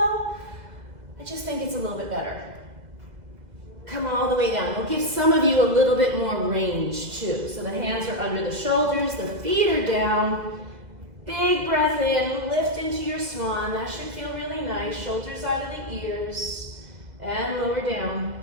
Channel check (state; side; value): late; left; 2.0 ms